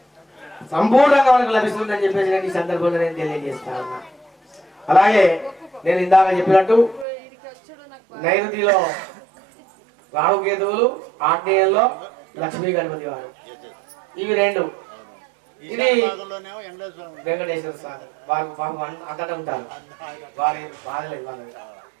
సంపూర్ణంగా మనకు లభిస్తుందని చెప్పేసి నేను ఈ సందర్భంలో నేను తెలియజేస్తా ఉన్నా. అలాగే నేను ఇందాక చెప్పినట్టు నైరుతిలో రాహుకేతువులు, ఆగ్నేయంలో లక్ష్మీ గణపతి వారు, ఇవి రెండు. ఇది వెంకటేశ్వర స్వామి వారు పాపం అక్కడ ఉంటారు, వారి బాధలేదు వాళ్ళు.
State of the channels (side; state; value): left; drops out; at 7.1 s